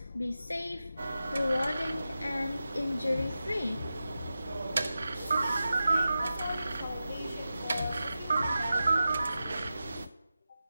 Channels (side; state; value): both; inverted; correlation -0.92